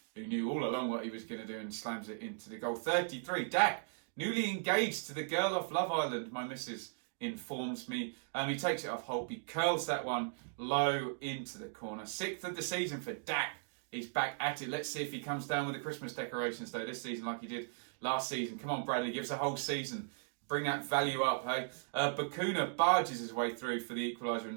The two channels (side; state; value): left; silent; digital silence